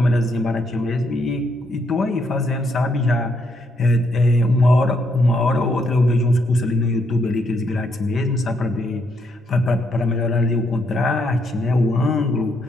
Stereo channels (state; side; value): normal; both; correlation 0.75